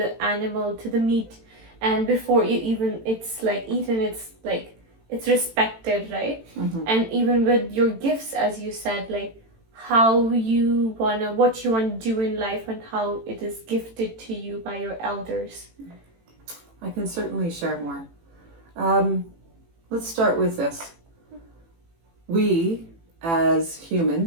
animal, to the meat. And before even it's like eaten, it's like it's respected, right? And even with your gifts, as you said, like how you wanna, what you want to do in life, and how it is gifted to you by your elders. I can certainly share more. Let's start with this. We, as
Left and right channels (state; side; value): late; left; 18 ms